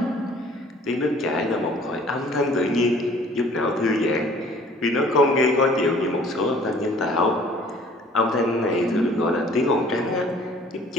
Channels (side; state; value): both; normal; correlation 0.53